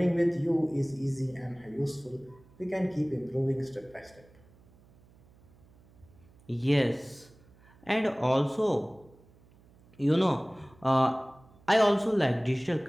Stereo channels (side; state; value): right; noise; hum, 28 dB below the sound